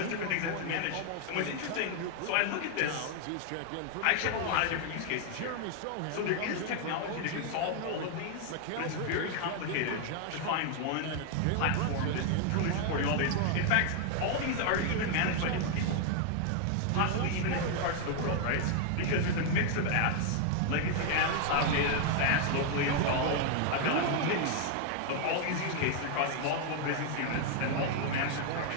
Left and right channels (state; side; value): different; both; correlation 0.00